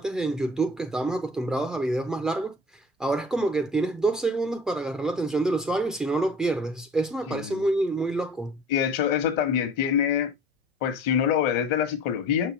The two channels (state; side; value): normal; both; correlation 0.42